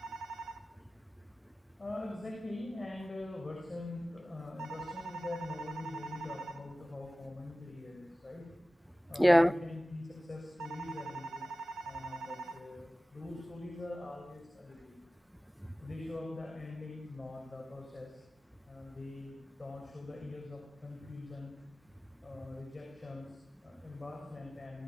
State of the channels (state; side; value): normal; both; correlation 0.96